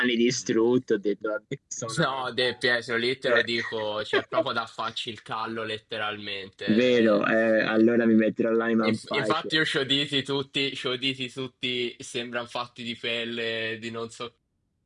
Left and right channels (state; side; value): identical; both; correlation 1.00